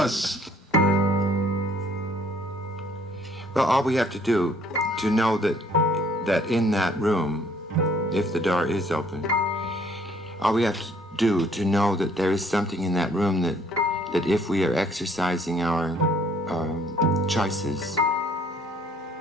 Well, all we have to do to know that in that room, if the door is open, all we have to do to know that there is something in that room that if we are exercising our choices,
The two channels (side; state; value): both; normal; correlation 0.61